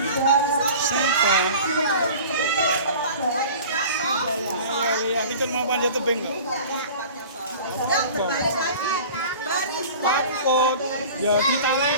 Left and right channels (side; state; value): both; inverted; correlation -0.41